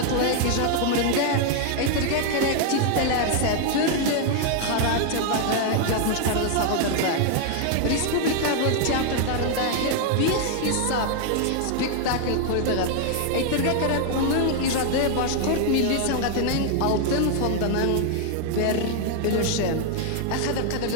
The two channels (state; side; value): different; both; correlation 0.00